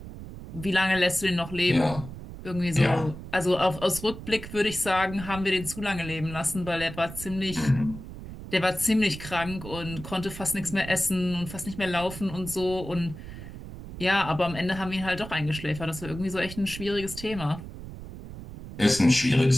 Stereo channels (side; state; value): right; noise; rumble, 12 dB below the sound